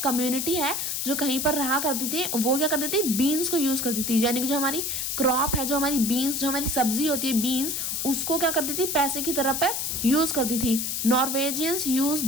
कम्युनिटी है जो कहीं पर रहा करती थी, वो क्या करती थी, बीन्स को यूज करती थी। यानी कि जो हमारी क्रॉप है, जो हमारी बीन्स, जो हमारी सब्जी होती है बीन्स, उसको क्या करती थी, पैसे की तरह पर यूज करती थी। नॉर्वेजियंस यूज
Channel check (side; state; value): left; noise; hiss, 1 dB below the sound